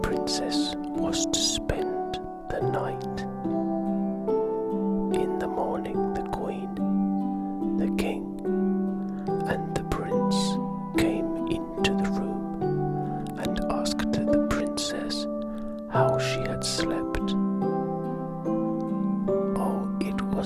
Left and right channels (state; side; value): identical; both; correlation 1.00